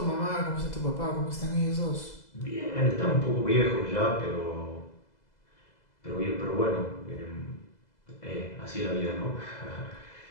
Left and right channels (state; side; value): late; right; 2.0 ms